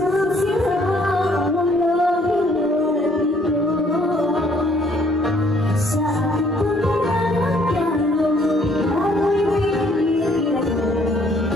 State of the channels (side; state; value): both; normal; correlation 0.64